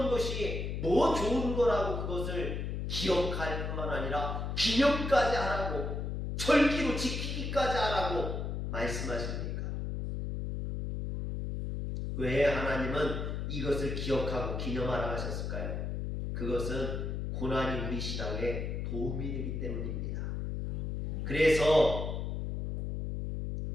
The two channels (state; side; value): noise; left; hum, 3 dB below the sound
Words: 것이 뭐 좋은 거라고 그것을 기억할 뿐만 아니라 기념까지 하라고, 절기로 지키기까지 하라고 말씀하십니까? 왜 하나님은 이것을 기억하고 기념하라 하셨을까요? 그것은 고난이 우리 신앙에 도움이 되기 때문입니다. 그래서